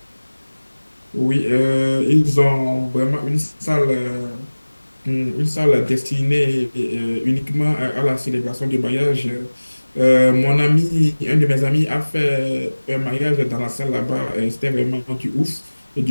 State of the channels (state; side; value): inverted; both; correlation -1.00